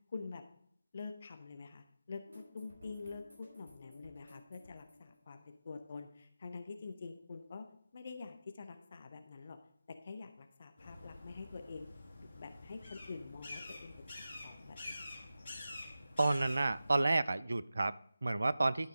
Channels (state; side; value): inverted; both; correlation -0.94